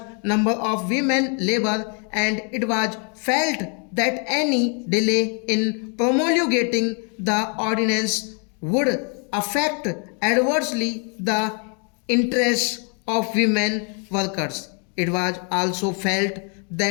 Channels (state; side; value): quieter; right; 39.2 dB